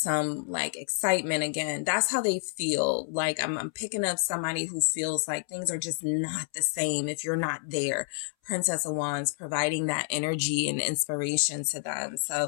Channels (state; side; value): silent; right; 59 dB below the other